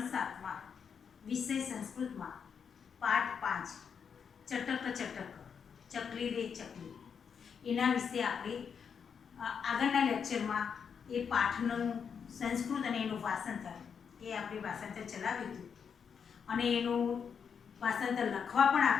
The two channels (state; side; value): quieter; right; 6.8 dB